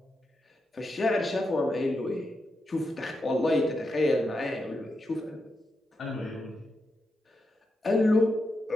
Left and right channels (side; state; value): both; normal; correlation 0.86